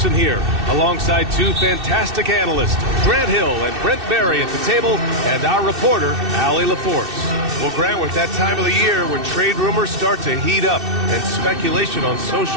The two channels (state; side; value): late; left; 2.6 ms